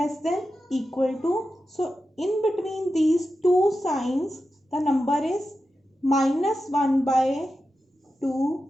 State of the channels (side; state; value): both; normal; correlation 0.91